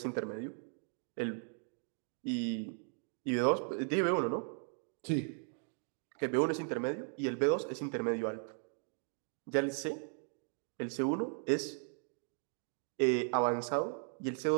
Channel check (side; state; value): left; silent; 53 dB below the other